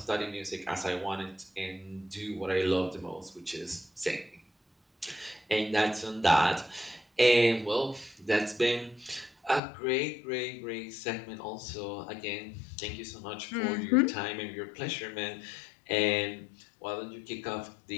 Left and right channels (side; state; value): right; drops out; at 9.6 s